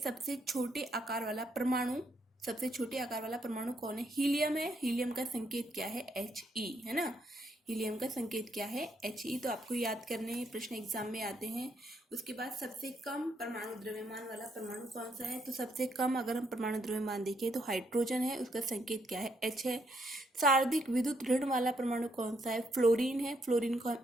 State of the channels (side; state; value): both; normal; correlation 0.75